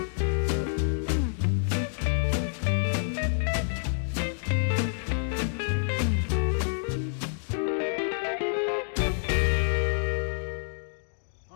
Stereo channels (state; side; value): silent; right; digital silence